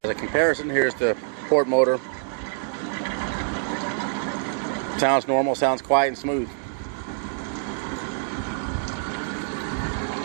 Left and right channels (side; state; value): left; silent; 61 dB below the other